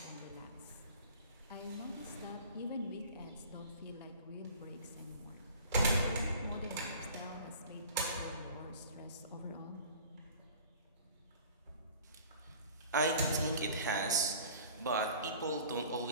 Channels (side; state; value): both; inverted; correlation -0.45